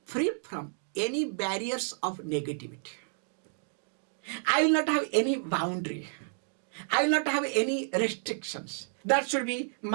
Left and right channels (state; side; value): silent; left; digital silence